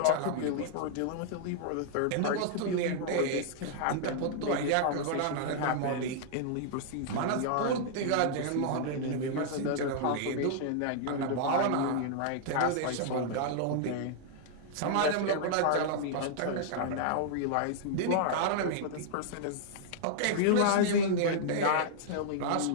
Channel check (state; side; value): different; both; correlation -0.01